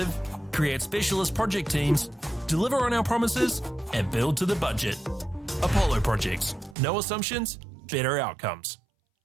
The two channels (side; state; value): left; drops out; at 6.8 s